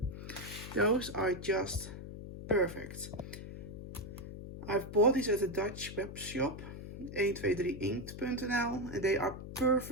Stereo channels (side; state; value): left; noise; hum, 10 dB below the sound